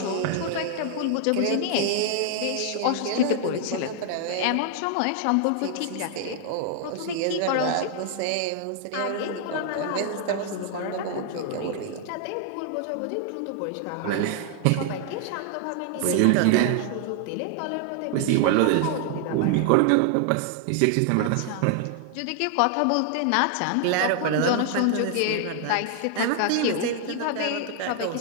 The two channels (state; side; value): different; both; correlation 0.00